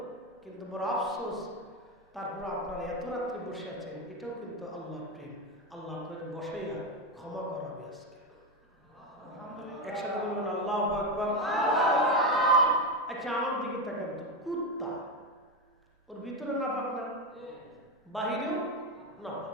কিন্তু বড় আফসোস, তারপর আপনারা এত রাত্রে বসে আছেন, এটাও কিন্তু আল্লাহর প্রেম। আল্লাহ আপনাকে বসাইয়া ক্ষমা করাবে আজকে। একসাথে বলবেন আল্লাহু আকবার। আচ্ছা আমার দিকে তাকান তো, কুত্তা ওর ভিতরে নাপাক না, বাহিরেও নাপাক।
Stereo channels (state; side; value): normal; both; correlation 0.13